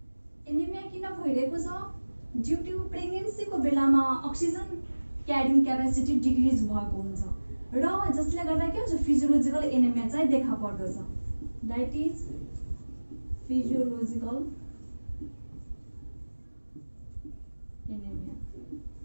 किन भइरहेको छ ड्यू टु प्रेग्नेन्सीको बेलामा अक्सिजन क्यारिङ क्यापेसिटी डिक्रिज भएको हुन्छ र जसले गर्दा के हुन्छ फिजियोलोजिकल एनेमिया चाहिँ देखा पर्दछ दैट इज फिजियोलोजिकल एनेमिया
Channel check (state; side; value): inverted; both; correlation -1.00